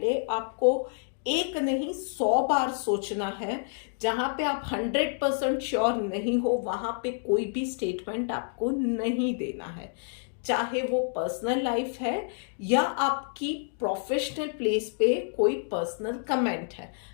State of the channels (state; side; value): silent; right; digital silence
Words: आपको एक नहीं 100 बार सोचना है। जहां पे आप 100% श्योर नहीं हो वहां पे कोई भी स्टेटमेंट आपको नहीं देना है, चाहे वो पर्सनल लाइफ है या आपकी प्रोफेशनल प्लेस पे कोई पर्सनल कमेंट है।